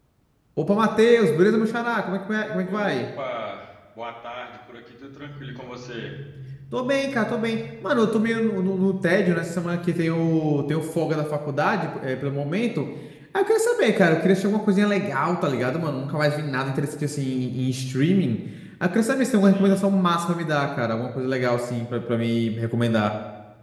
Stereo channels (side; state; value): both; identical; correlation 1.00